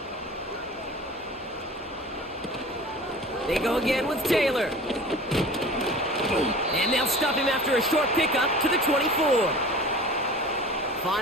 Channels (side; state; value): both; normal; correlation 0.39